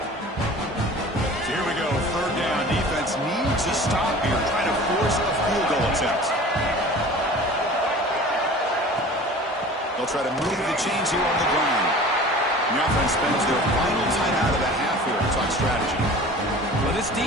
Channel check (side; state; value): both; normal; correlation 0.41